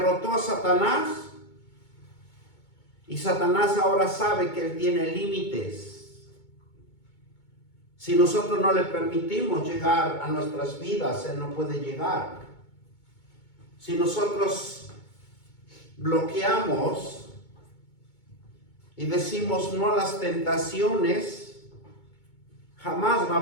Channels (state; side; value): late; right; 2.2 ms